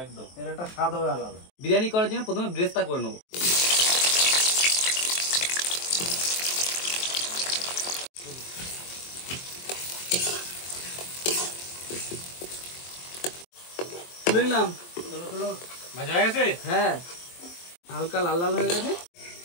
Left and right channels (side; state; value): right; late; 23 ms